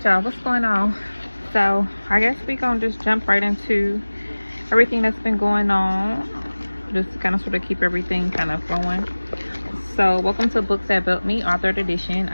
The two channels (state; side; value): inverted; both; correlation -1.00